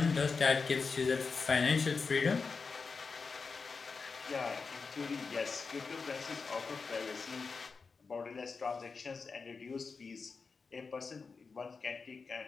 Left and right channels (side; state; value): right; quieter; 4.8 dB